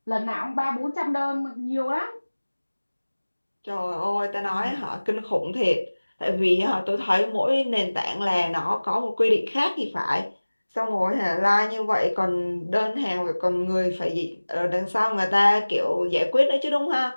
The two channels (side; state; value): both; inverted; correlation -1.00